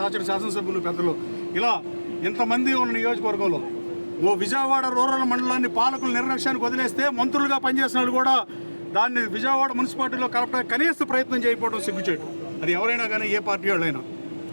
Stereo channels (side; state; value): both; inverted; correlation -1.00